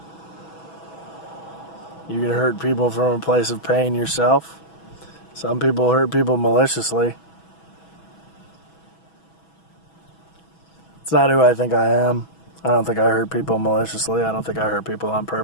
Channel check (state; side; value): late; right; 6.1 ms